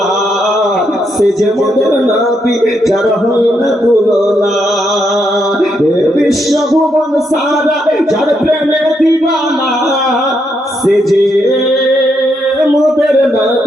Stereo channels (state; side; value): normal; both; correlation 0.78